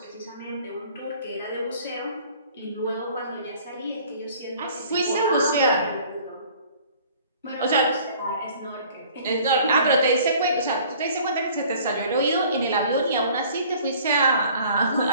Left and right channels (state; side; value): inverted; both; correlation -0.51